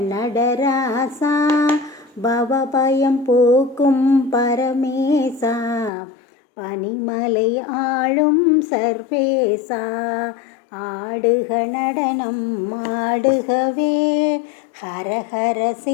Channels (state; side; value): drops out; right; at 5.9 s